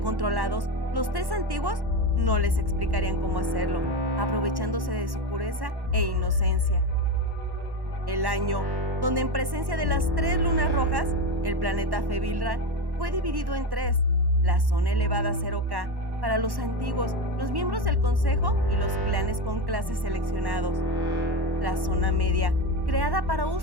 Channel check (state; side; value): late; left; 1.1 ms